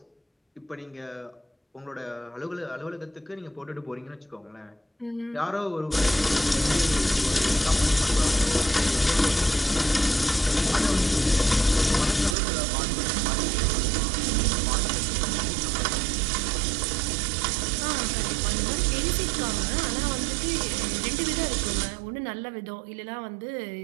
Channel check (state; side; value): drops out; left; at 12.4 s